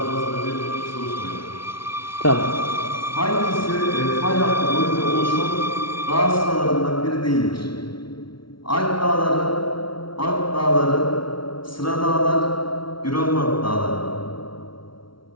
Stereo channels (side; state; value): right; late; 0.74 ms